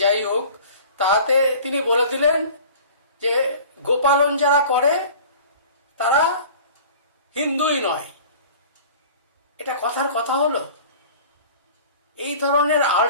যাই হোক, তাতে তিনি বলে দিলেন যে গোপালন যারা করে তারা হিন্দুই নয়। এটা কথার কথা হলো? এই ধরনের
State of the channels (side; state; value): both; inverted; correlation -0.44